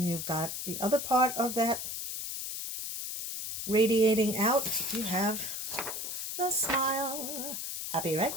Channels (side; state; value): left; noise; hiss, 4 dB below the sound